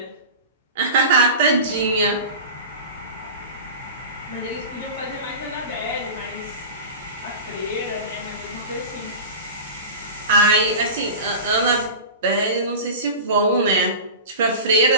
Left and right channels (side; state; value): both; inverted; correlation -0.32